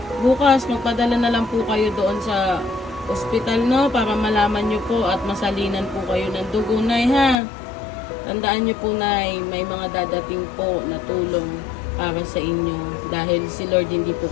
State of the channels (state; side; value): drops out; right; at 7.4 s